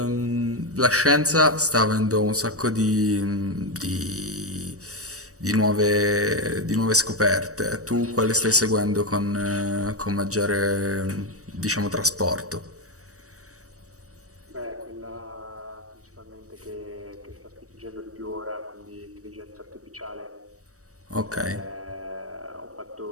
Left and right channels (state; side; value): late; left; 0.66 ms